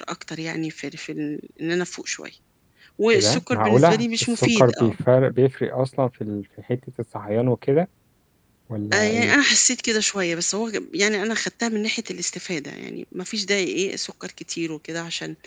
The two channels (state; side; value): identical; both; correlation 1.00